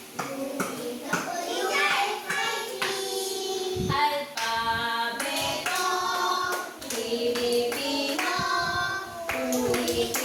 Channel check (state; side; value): identical; both; correlation 1.00